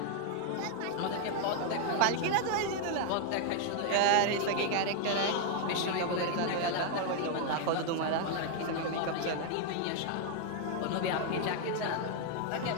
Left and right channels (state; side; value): different; both; correlation 0.00